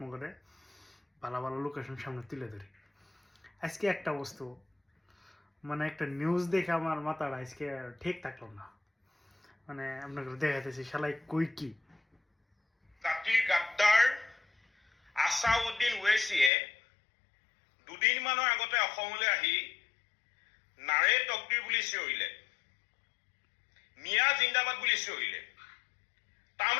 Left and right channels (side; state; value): right; drops out; at 16.5 s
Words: ভালো ভালো লোকেশন সামনে তুলে ধরি। আজকে একটা বস্তু মানে একটা নিউজ দেখে আমার মাথাটা আজকে ঠিক থাকলো না। মানে আপনাকে দেখাতেছি শালাই কই কি জাতিৰ গাদ্দাৰ আছাউদ্দিন ওৱেইছিয়ে দুদিনমানৰ আগতে অসমলৈ আহি নাৰে তকদিৰ বুলি চিঞৰিলে, মিয়া জিন্দাবাদ বুলি চিঞৰিলে।